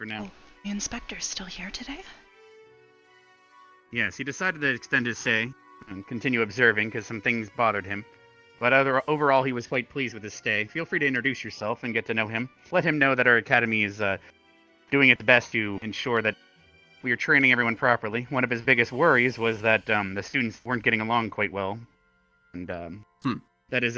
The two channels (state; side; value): identical; both; correlation 1.00